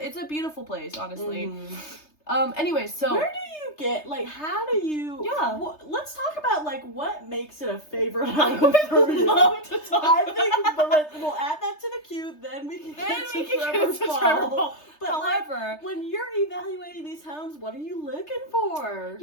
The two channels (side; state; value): right; late; 3.3 ms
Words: It's a beautiful place, honestly. Anyway, so where do you get, like, how do you? Yeah. Let's talk about, like, what makes it a favorite I home would for you. love to talk. I think, but we'll add that to the queue. Then we can get to Trevor Paul. But However, when you're evaluating these homes, what are you looking for?